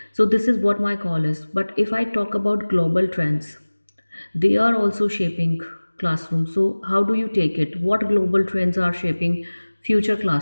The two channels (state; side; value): inverted; both; correlation -1.00